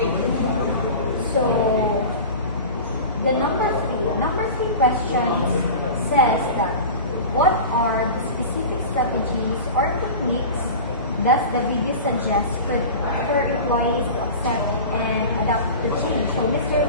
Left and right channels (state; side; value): inverted; both; correlation -0.33